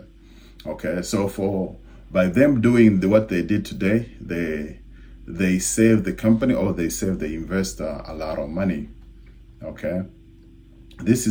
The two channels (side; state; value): both; identical; correlation 1.00